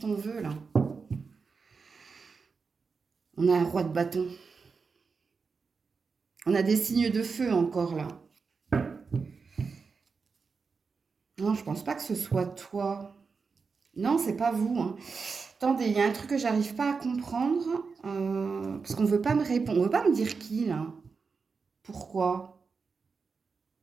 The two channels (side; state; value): left; quieter; 5.0 dB